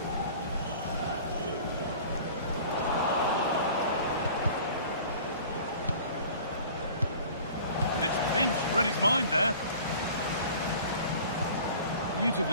And it's pinched, read his mind there.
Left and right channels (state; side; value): inverted; both; correlation -0.45